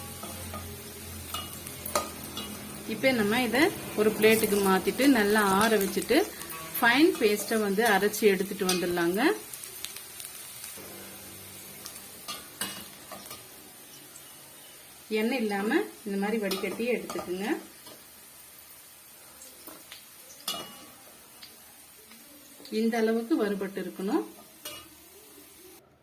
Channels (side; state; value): both; identical; correlation 1.00